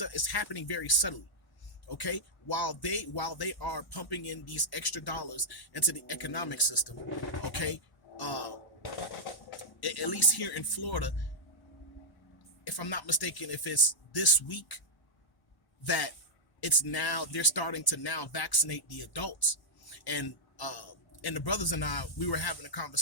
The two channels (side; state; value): right; late; 1.1 ms